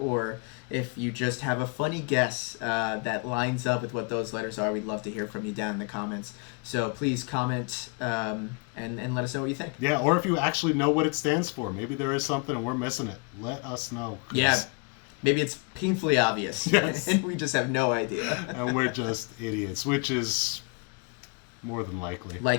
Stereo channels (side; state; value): right; quieter; 32.9 dB